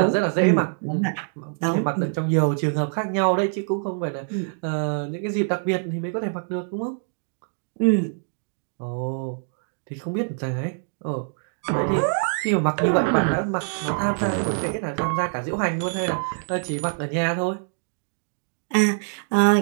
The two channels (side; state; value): left; silent; 62 dB below the other